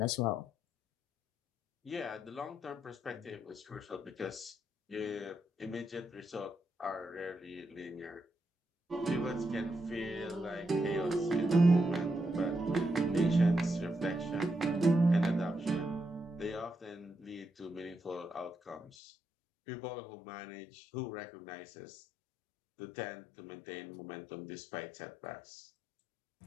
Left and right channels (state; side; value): drops out; right; at 18.9 s